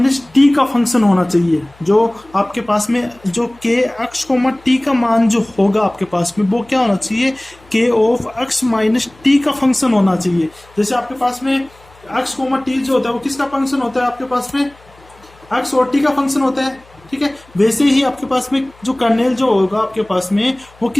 टी का फंक्शन होना चाहिए। जो आपके पास में जो के एक्स कोमा टी का मान जो होगा आपके पास में वो क्या होना चाहिए, के ऑफ x माइनस टी का फंक्शन होना चाहिए। जैसे आपके पास में x कोमा टी जो होता है वो किसका फंक्शन होता है, आपके पास में x और t का फंक्शन होता है, ठीक है। वैसे ही आपके पास में जो कर्नेल जो होगा आपके पास में वो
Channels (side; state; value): left; noise; hum, 27 dB below the sound